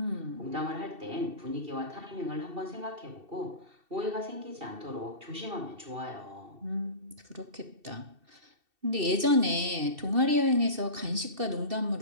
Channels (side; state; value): left; late; 2.7 ms